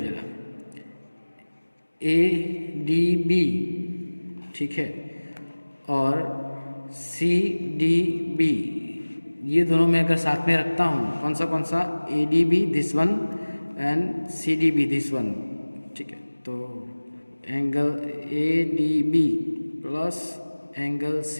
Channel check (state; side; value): inverted; both; correlation -1.00